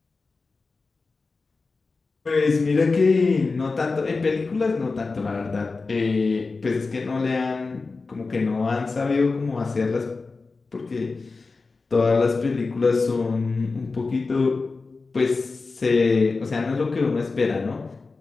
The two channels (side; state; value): right; quieter; 4.0 dB